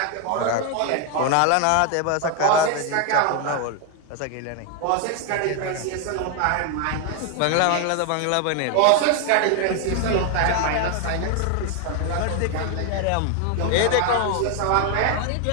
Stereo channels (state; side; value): different; both; correlation 0.01